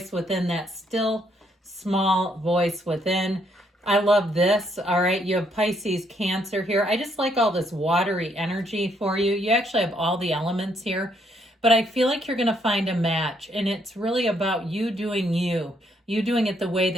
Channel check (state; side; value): normal; both; correlation 0.71